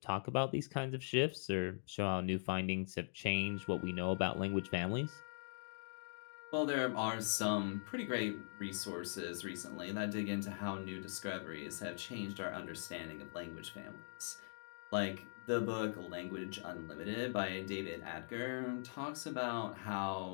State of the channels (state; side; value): silent; right; digital silence